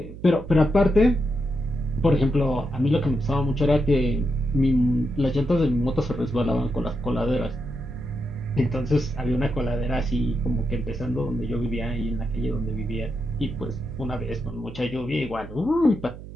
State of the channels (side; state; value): right; noise; hum, 13 dB below the sound